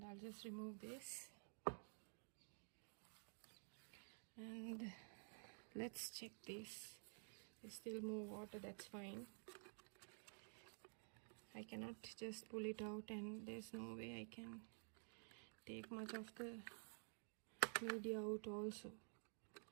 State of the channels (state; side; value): silent; left; digital silence